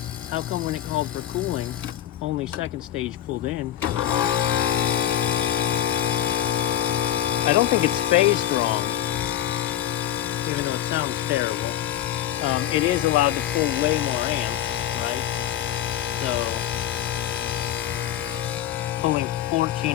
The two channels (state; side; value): quieter; right; 11.7 dB